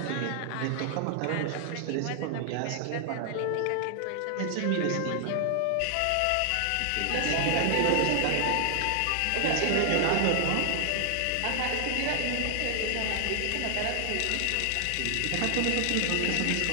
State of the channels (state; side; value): different; both; correlation 0.00